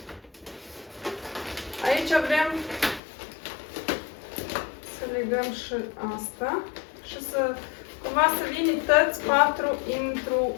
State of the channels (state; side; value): drops out; right; at 3.0 s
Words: Aici vrem să legăm și asta și să cumva să vină toți patru